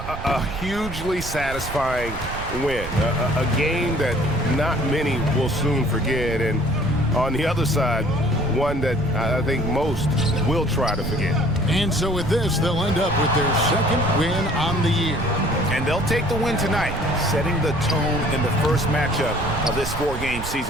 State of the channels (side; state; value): right; noise; rumble, 9 dB below the sound